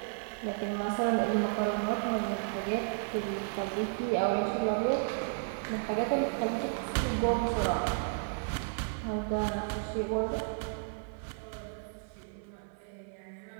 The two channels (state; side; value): silent; left; 56 dB below the other